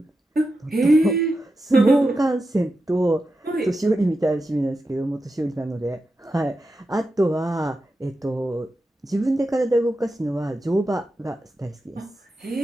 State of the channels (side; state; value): both; normal; correlation 0.89